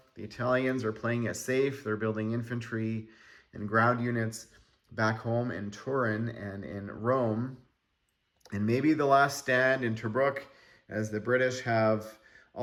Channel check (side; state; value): both; identical; correlation 1.00